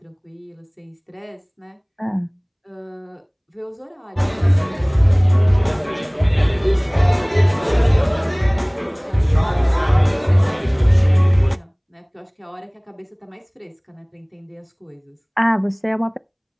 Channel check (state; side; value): identical; both; correlation 1.00